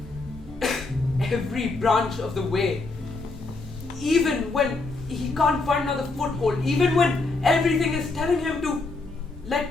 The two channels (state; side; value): quieter; right; 3.5 dB